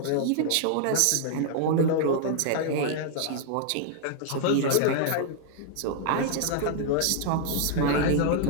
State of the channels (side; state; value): both; different; correlation 0.00